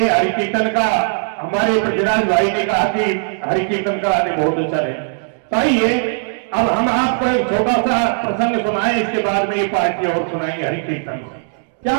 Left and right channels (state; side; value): silent; left; digital silence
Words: हरि कीर्तन का हमारे पृथ्वीराज भाई ने कहा कि हरि कीर्तन का आने बहुत अच्छा है। तो आइए अब हम आपको एक छोटा सा प्रसंग सुनाएं, इसके बाद में ये पार्टी और सुनाएंगे हरि कीर्तन। क्या